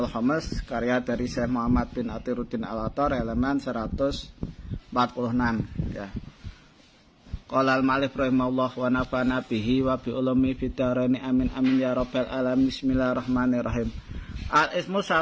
Khamis karya dari Syekh Muhammad bin Athiruddin Al-Attar, halaman 146 ya. Qala al-ma'alif rahimahullah wa nafa'ana bihi wa bi ulumi fid dharaini amin amin ya rabbal alamin. Bismillahirrahmanirrahim. Al-ismu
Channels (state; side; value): identical; both; correlation 1.00